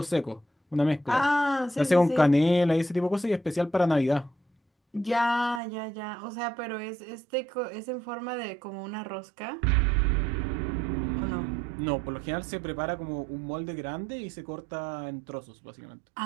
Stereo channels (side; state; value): left; drops out; at 5.6 s